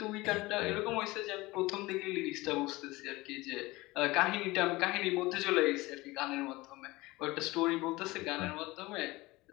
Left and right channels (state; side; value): quieter; right; 20.8 dB